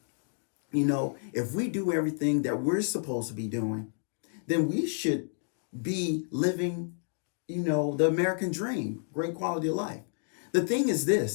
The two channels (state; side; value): silent; right; digital silence